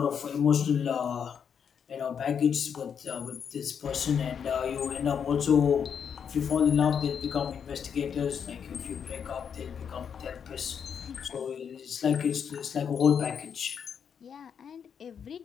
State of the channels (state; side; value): quieter; right; 7.4 dB